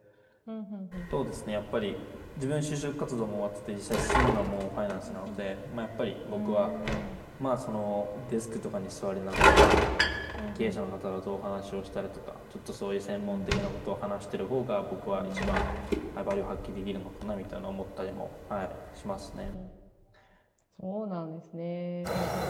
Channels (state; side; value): identical; both; correlation 1.00